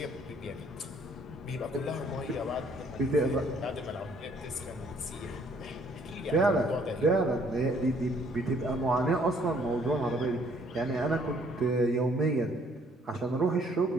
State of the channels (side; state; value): both; normal; correlation 0.63